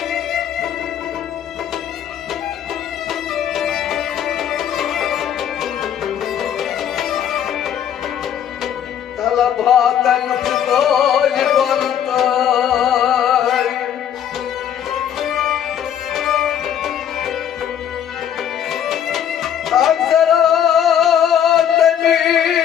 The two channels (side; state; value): right; quieter; 9.5 dB